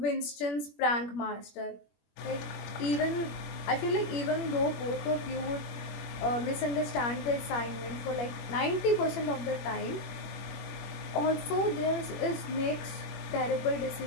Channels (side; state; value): right; late; 21 ms